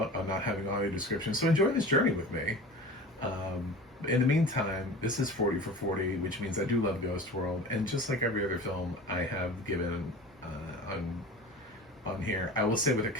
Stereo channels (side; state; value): both; normal; correlation 0.37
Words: on not having audio description. So enjoy this journey with me. In the meantime, this is 40 for 40, which means I do love Ghost World, and just like every other film I have given on here, I will say with a